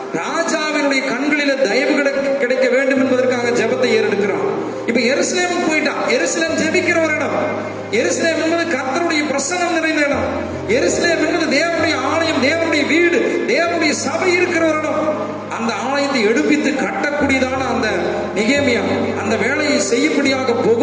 ராஜாவினுடைய கண்களில தயவு கிடைக்க வேண்டும் என்பதற்காக ஜெபத்தை ஏறெடுக்கிறான். இப்ப எருசலேமுக்கு போயிட்டான். எருசலேம் ஜெபிக்கிற ஒரு இடம். எருசலேம் என்பது கர்த்தருடைய பிரசன்னம் நிறைந்த இடம். எருசலேம் என்பது தேவனுடைய ஆலயம், தேவனுடைய வீடு, தேவனுடைய சபை இருக்கிற ஒரு இடம். அந்த ஆலயத்தை எடுப்பித்து கட்டக்கூடியதான அந்த நெகேமியா அந்த வேலையை செய்யும்படியாக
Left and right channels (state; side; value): identical; both; correlation 1.00